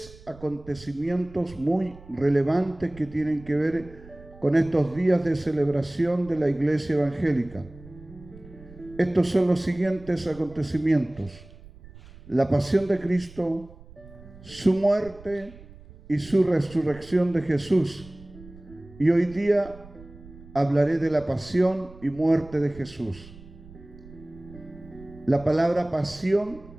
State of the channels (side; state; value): right; noise; rumble, 20 dB below the sound